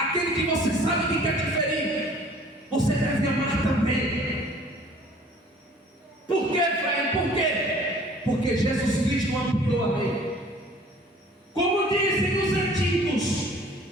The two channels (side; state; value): both; normal; correlation 0.52